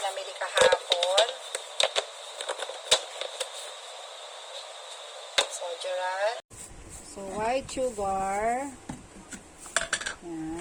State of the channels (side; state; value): both; identical; correlation 1.00